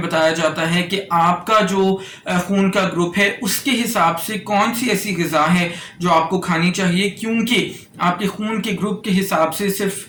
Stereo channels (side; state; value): both; identical; correlation 1.00